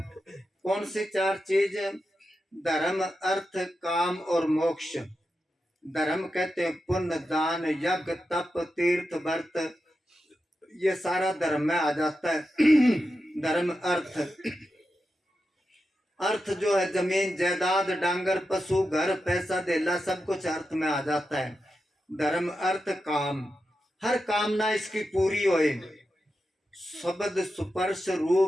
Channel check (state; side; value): normal; both; correlation 0.89